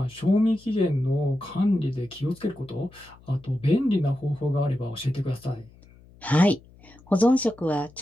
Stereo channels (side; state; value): left; noise; hum, 25 dB below the sound